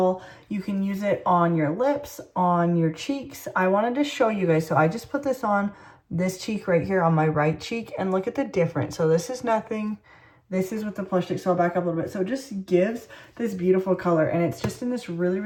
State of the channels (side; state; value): both; identical; correlation 1.00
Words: You can use it on your lips, on your cheeks. I wanted to show you guys, so I just put this on this cheek right here on my right cheek and look at the difference. So this is nothing. This is with the plush stick, so I'll back up a little bit. So it just gives this beautiful color, and it's just in this really,